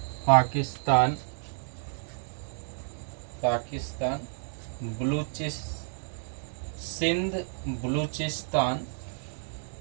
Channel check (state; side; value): silent; left; digital silence